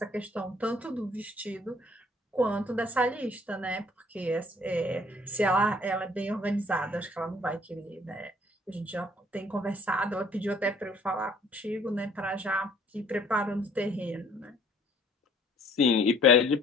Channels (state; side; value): normal; both; correlation 0.58